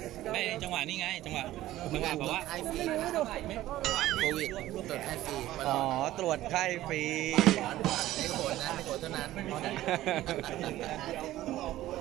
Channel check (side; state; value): left; quieter; 14.9 dB